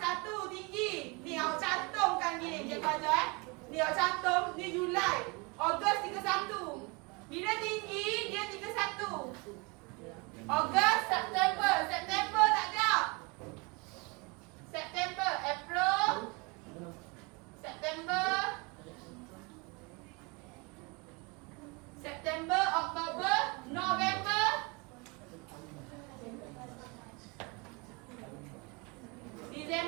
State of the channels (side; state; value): left; quieter; 28.9 dB